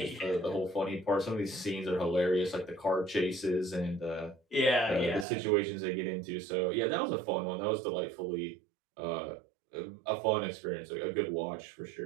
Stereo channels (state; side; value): drops out; left; at 5.2 s